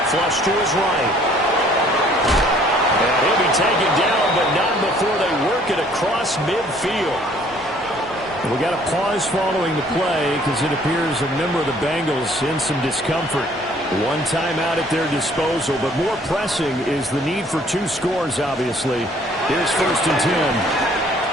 Flush to his right. And he'll be taken down, but not before they work it across midfield. We got a pause following the play because it appears a member of the Bengals in some discomfort. 1 timeout at their disposal, but more pressing is the need for 2 scores, obviously. Here's 1st and 10.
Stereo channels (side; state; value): both; normal; correlation 0.58